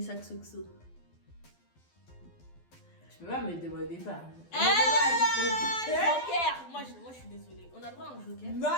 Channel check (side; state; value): right; late; 12 ms